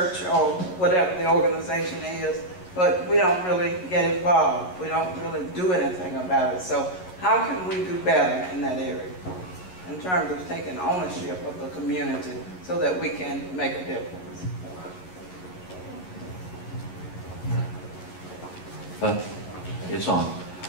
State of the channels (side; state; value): right; late; 11 ms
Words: or whatever the organization is, but we don't really get involved. We don't really do anything about it. So how can we do better in that area in terms of taking ownership of the community so that we can make a difference? It's on.